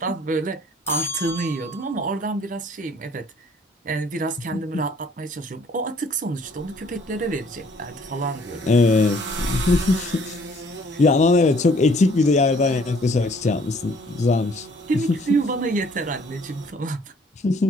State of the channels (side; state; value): both; normal; correlation 0.59